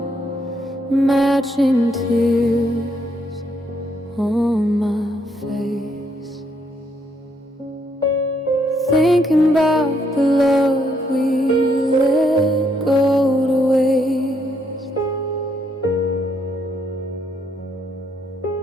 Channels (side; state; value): both; normal; correlation 0.73